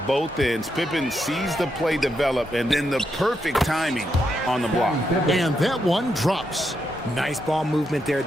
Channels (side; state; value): both; normal; correlation 0.82